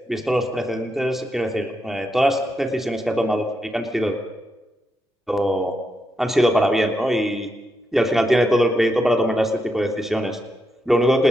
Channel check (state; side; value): normal; both; correlation 0.83